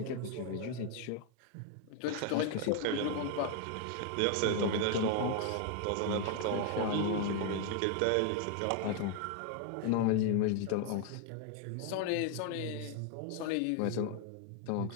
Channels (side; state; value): both; different; correlation 0.00